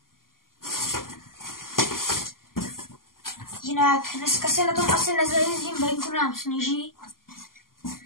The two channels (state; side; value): late; right; 0.91 ms